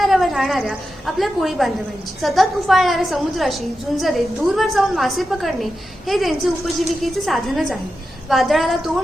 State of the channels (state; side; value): normal; both; correlation 0.90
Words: राहणाऱ्या आपल्या कोळी बांधवांची. सतत उफाळणाऱ्या समुद्राशी झुंज देत दूरवर जाऊन मासे पकडणे हे त्यांचे उपजीविकेचे साधनच आहे. वादळाला